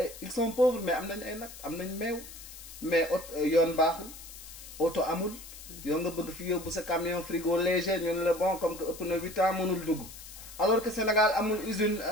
ils sont pauvres mais am nañ ay nag am nañ meew mais yoon baaxul oto amul yow nga bëgg fi yóbbu sa camion frigo léger ñu ne la bon comme que ëpp na 8 ans mënul dugg alors que Sénégal amul usine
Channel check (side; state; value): left; noise; hiss, 15 dB below the sound